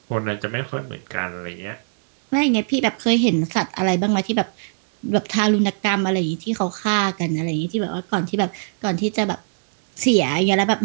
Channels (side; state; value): left; silent; digital silence